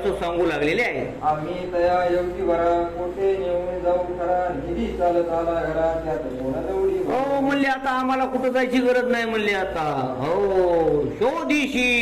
सांगू लागलेले आहे. आम्ही तया योगी वरा कोठे नेऊन जाऊ खरा निधी चालत आला घरा त्यात कोणा दौडी. हो म्हणले आता आम्हाला कुठं जायची गरज नाही म्हणले. आता हो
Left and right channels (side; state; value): both; identical; correlation 1.00